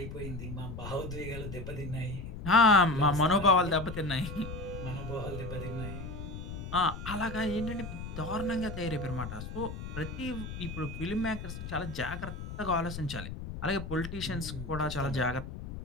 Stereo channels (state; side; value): noise; left; rumble, 8 dB below the sound